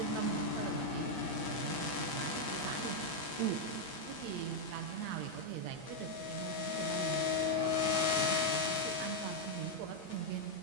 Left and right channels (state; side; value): late; left; 8.5 ms